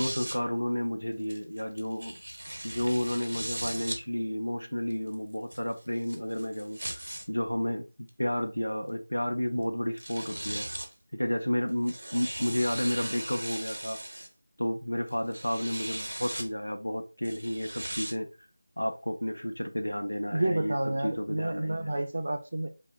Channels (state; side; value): inverted; both; correlation -0.99